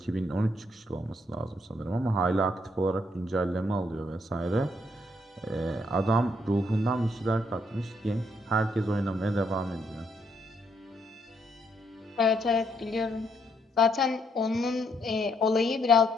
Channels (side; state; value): both; normal; correlation 0.73